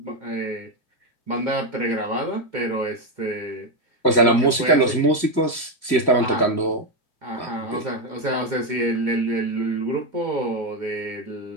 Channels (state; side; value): late; right; 1.9 ms